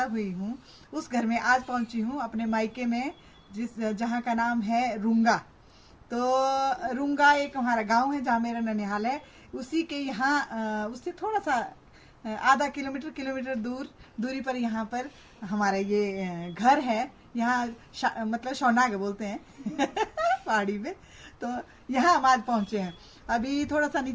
हुई हूँ, उस घर में आज पहुंची हूँ, अपने मायके में, जहाँ का नाम है रूंगा। तो रूंगा एक हमारा गांव है जहाँ मेरा ननिहाल है। उसी के यहाँ उससे थोड़ा सा आधा किलोमीटर दूरी पर यहाँ पर हमारा ये घर है। यहाँ मतलब शौनाग बोलते हैं पहाड़ी में। तो यहाँ हम आज पहुंचे हैं। अभी थोड़ा सा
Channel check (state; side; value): identical; both; correlation 1.00